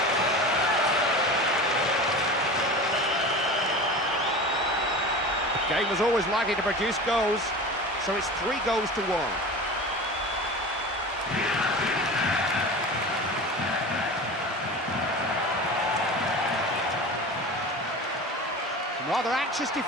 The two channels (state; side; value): normal; both; correlation 0.33